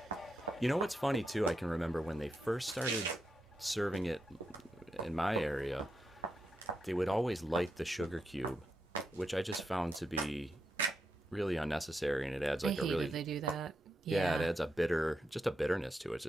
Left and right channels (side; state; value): both; normal; correlation 0.85